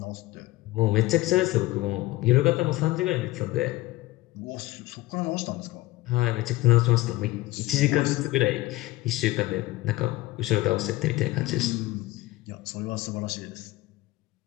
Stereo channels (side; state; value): right; quieter; 18.7 dB